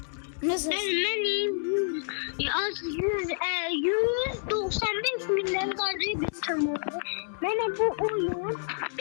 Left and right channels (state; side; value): silent; right; digital silence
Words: Nasıl? Benim az 195 milyarlarca bir tanıdı. Bana bu oyun